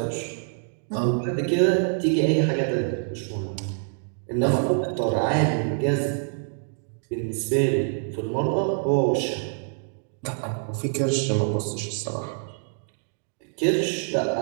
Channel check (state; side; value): silent; left; digital silence